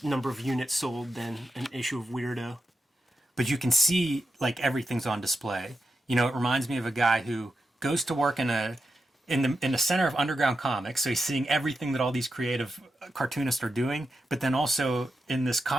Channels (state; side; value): normal; both; correlation 0.89